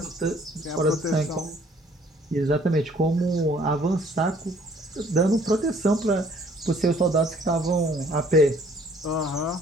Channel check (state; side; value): normal; both; correlation 0.59